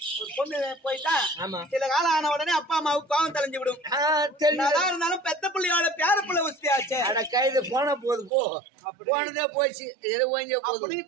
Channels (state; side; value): drops out; left; at 8.3 s